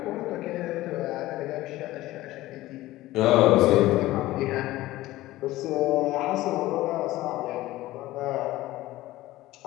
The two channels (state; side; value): quieter; right; 16.9 dB